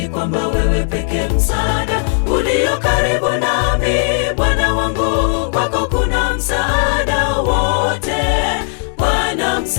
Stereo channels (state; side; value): silent; right; 61 dB below the other